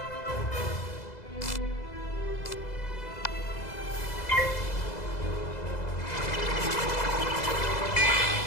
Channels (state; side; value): late; right; 2.0 ms